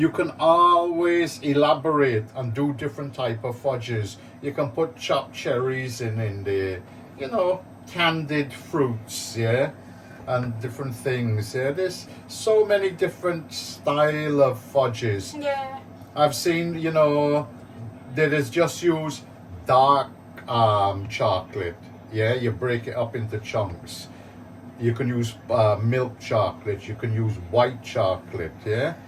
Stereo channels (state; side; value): identical; both; correlation 1.00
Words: can always elaborate and do different type of fudges. You can put chopped cherries in there, you know, candied fruits, yeah, and different things. Yeah, there's so many different style of fudges. Yeah. I've seen, you know, that is just use dark chocolate. Yeah, you break it up into chunks. You can use milk chocolate. You can use white chocolate. Yeah,